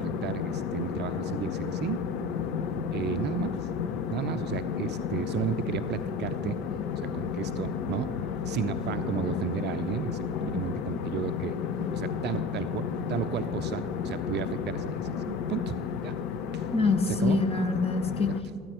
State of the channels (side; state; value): both; normal; correlation 0.37